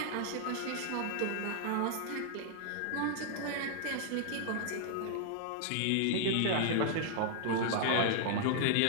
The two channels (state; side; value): different; both; correlation -0.01